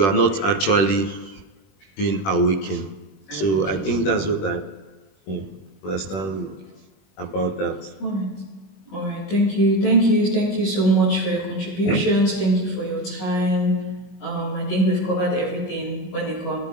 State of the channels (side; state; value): right; late; 21 ms